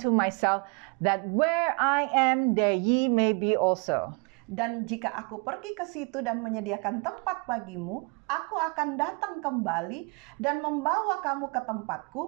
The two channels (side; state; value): left; quieter; 33.6 dB